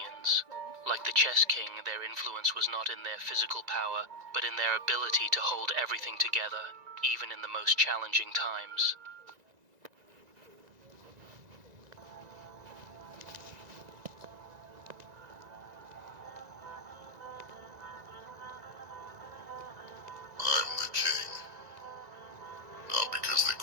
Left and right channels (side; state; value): left; late; 1.9 ms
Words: Like the chess king, their influence was not in their physical power, but in their ability to hold everything together, even in the most challenging times. I'm the king, not because they